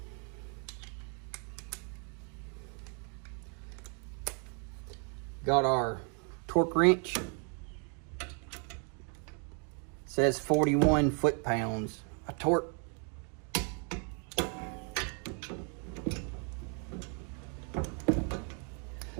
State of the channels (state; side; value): quieter; left; 39.5 dB